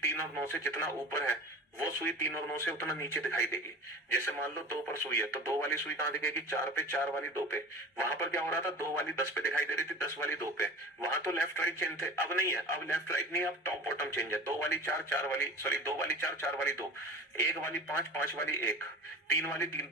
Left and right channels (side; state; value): both; normal; correlation 0.36